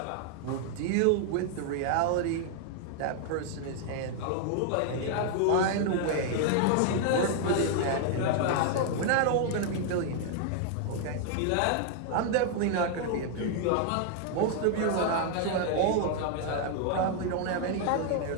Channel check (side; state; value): both; different; correlation 0.00